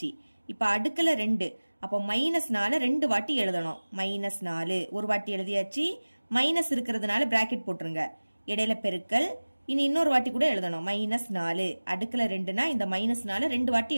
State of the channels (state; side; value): inverted; both; correlation -1.00